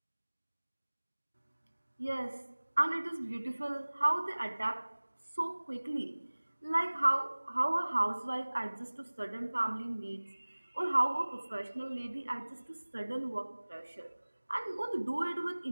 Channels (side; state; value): both; inverted; correlation -1.00